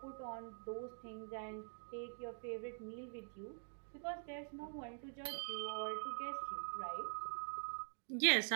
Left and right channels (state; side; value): silent; left; digital silence